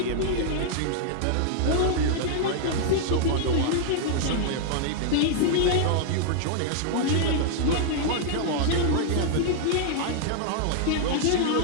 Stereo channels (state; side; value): different; both; correlation -0.01